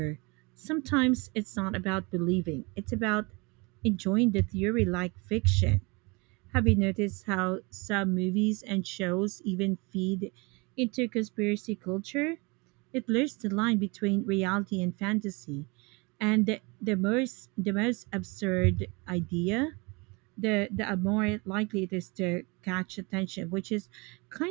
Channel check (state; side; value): quieter; left; 28.0 dB